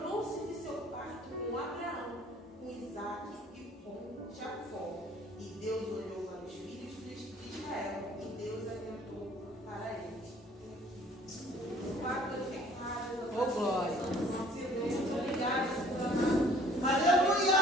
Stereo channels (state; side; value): normal; both; correlation 0.54